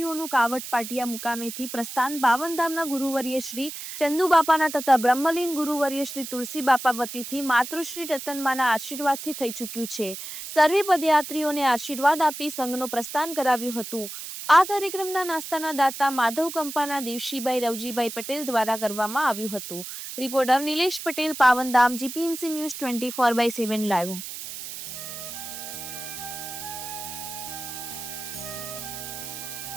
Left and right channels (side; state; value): right; noise; hiss, 9 dB below the sound